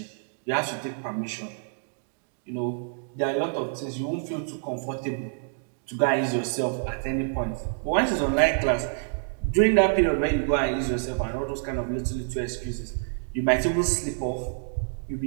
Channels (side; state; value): left; silent; digital silence